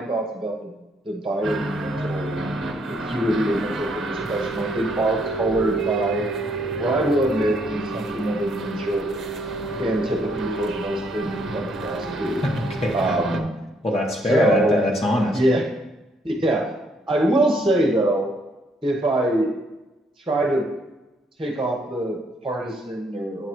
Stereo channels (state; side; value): normal; both; correlation 0.69